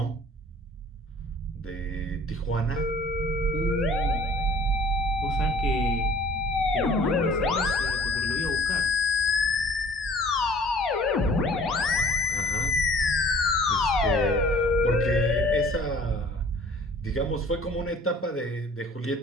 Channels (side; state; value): both; normal; correlation 0.50